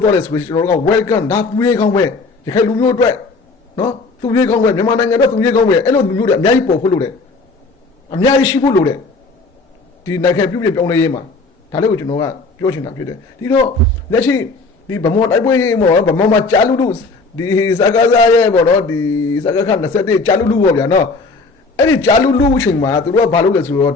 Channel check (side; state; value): right; quieter; 3.8 dB